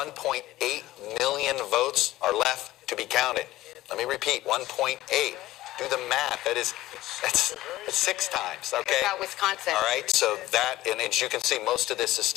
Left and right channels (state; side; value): quieter; right; 16.2 dB